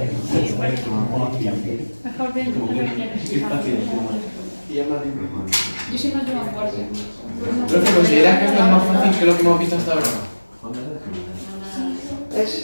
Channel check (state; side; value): inverted; both; correlation -1.00